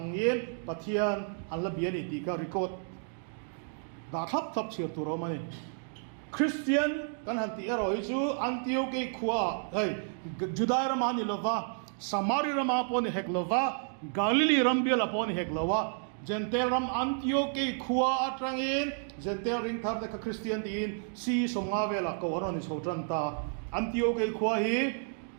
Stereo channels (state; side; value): silent; left; 57 dB below the other